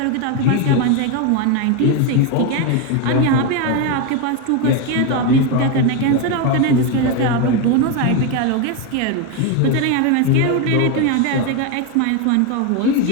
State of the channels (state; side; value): different; both; correlation 0.02